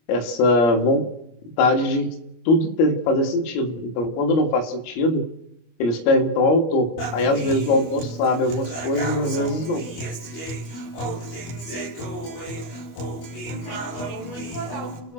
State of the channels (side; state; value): right; late; 25 ms